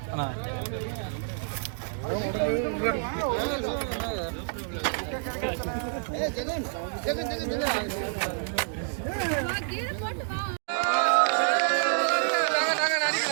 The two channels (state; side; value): silent; left; digital silence